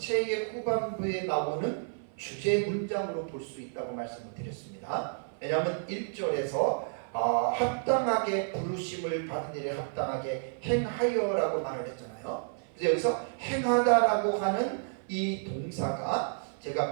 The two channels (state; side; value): silent; left; 57 dB below the other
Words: 후반부에 나오는 주제 문장으로 볼 수 있다고 말씀을 드렸습니다. 왜냐하면 1절에서 합당하게 부르심을 받은 일에 합당하게 행하여라고 말을 했잖아요. 그래서 여기서 행하다라고 하는 이 동사가